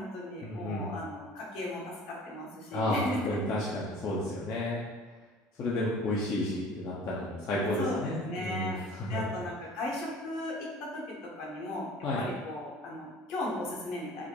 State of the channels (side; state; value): both; normal; correlation 0.46